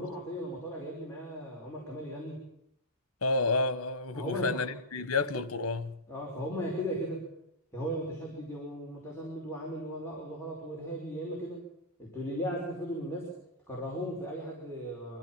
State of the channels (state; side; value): normal; both; correlation -0.10